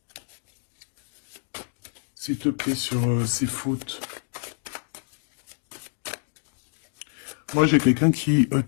S'il te plaît, sur ces fautes. Moi, j'ai quelqu'un qui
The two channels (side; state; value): right; silent; 58 dB below the other